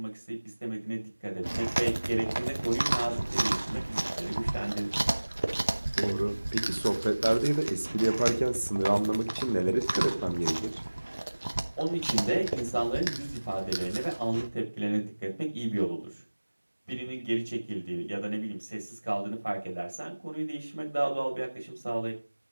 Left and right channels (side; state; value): both; inverted; correlation -1.00